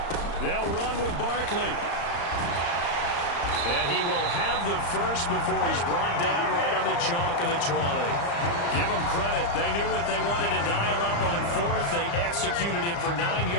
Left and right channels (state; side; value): late; right; 35 ms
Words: They'll run with Barkley. And he will have the first before he's brought down right on the chalk of the 20. Give them credit. They knew what they wanted to dial up on fourth. They executed it for 9